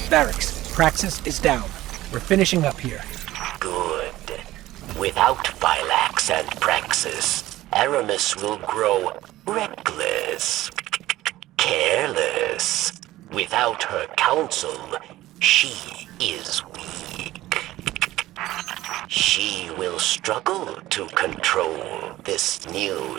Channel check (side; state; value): left; quieter; 16.1 dB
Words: Phylaks, Praxis is down. We're finishing up here. Good. Without Phylaks and Praxis, Aramis will grow reckless, careless. Without her counsel, she is weak. She will struggle to control this